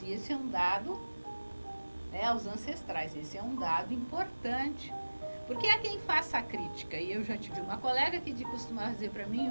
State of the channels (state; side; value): inverted; both; correlation -1.00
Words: E esse é um dado, aos ancestrais, esse é um dado importante. Porque há quem faça a crítica, e eu já tive uma colega que costumava dizer para